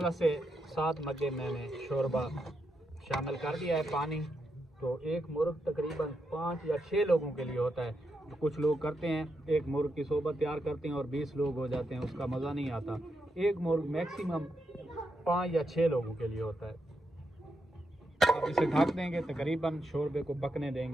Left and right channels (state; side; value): normal; both; correlation 0.83